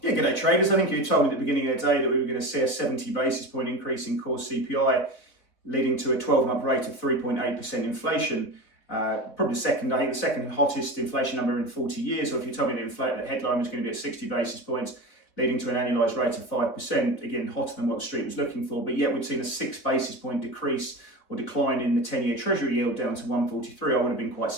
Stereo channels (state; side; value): late; right; 4.3 ms